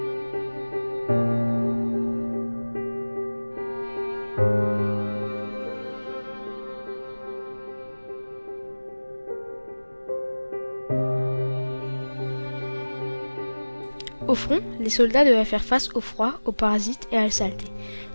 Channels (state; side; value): inverted; both; correlation -1.00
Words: Au front, les soldats devaient faire face au froid, aux parasites et à la saleté.